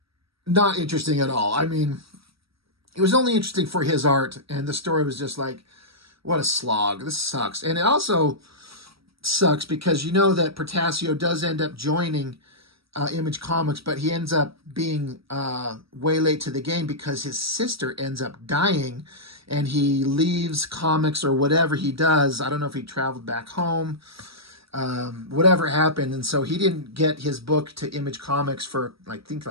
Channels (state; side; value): late; left; 0.76 ms